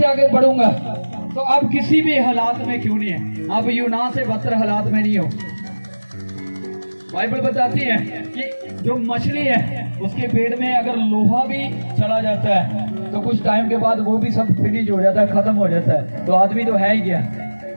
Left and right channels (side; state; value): both; inverted; correlation -1.00